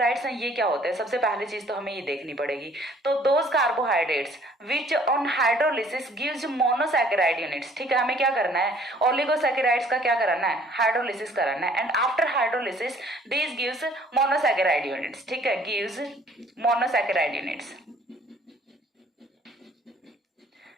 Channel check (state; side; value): normal; both; correlation 0.57